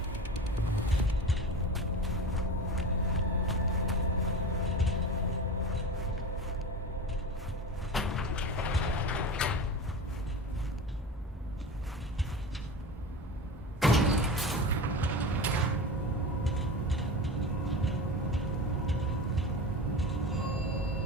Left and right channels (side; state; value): both; normal; correlation 0.30